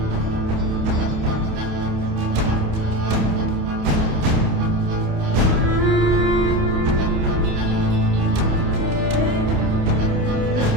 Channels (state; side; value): late; left; 28 ms